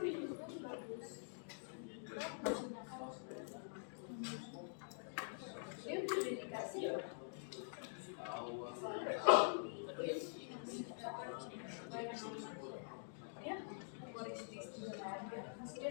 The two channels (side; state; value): right; silent; digital silence